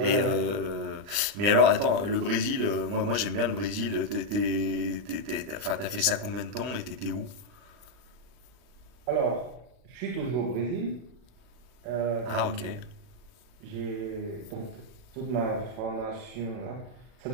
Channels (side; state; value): left; late; 39 ms